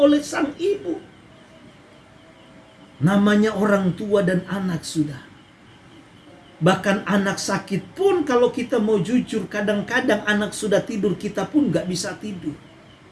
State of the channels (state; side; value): identical; both; correlation 1.00